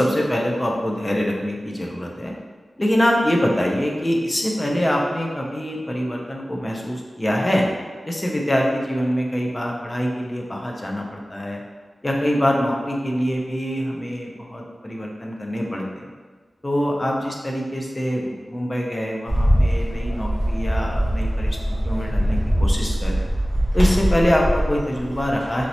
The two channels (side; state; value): both; normal; correlation 0.97